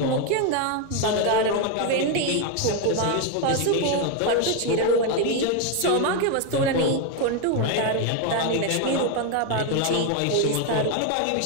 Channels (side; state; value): both; different; correlation 0.01